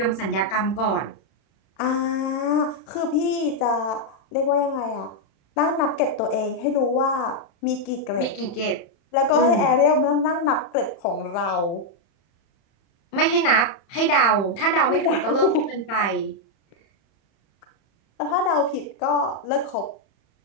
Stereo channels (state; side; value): late; right; 31 ms